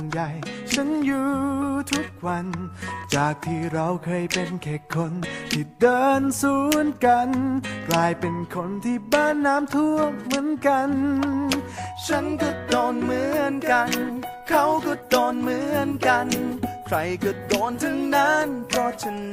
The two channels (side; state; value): both; identical; correlation 1.00